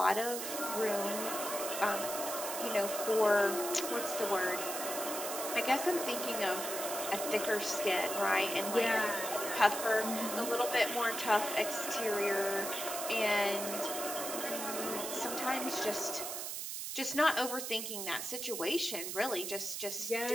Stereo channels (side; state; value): right; noise; hiss, 4 dB below the sound